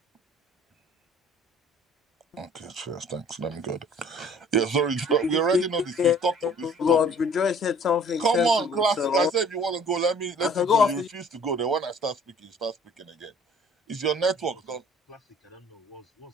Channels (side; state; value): both; normal; correlation 0.52